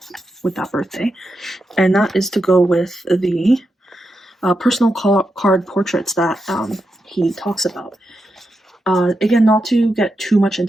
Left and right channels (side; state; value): both; normal; correlation 0.86